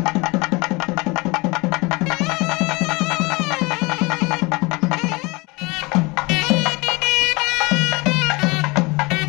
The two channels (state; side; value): quieter; right; 25.6 dB